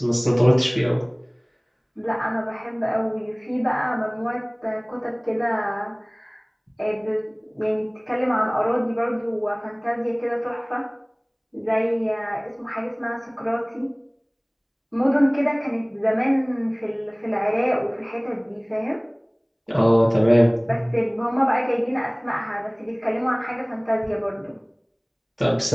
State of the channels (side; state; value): both; identical; correlation 1.00